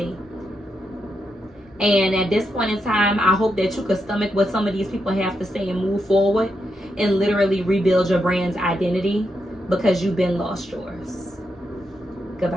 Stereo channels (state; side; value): normal; both; correlation 0.83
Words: And at this point in time, I hope that you could stomach what some of these people have to say and move forward and literally rebuild your brand's identity, because you've been lost yours.